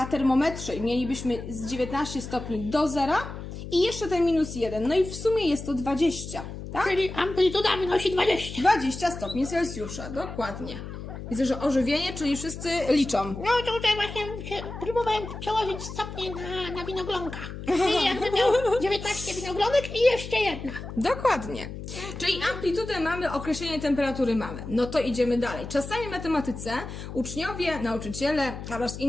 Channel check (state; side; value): noise; left; hum, 9 dB below the sound